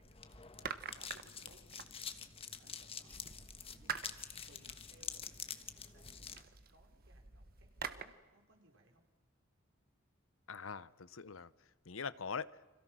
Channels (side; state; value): both; normal; correlation -0.05